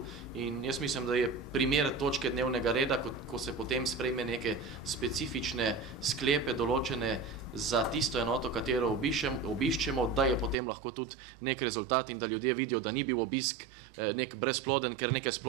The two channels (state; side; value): drops out; left; at 10.6 s